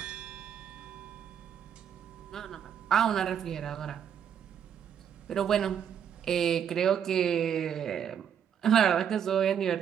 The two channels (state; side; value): quieter; left; 8.6 dB